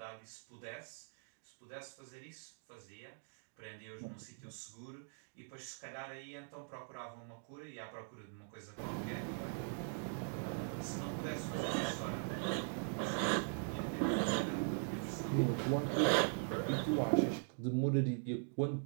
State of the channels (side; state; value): left; silent; digital silence